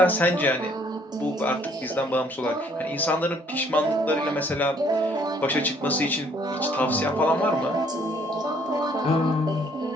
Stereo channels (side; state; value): both; normal; correlation 0.62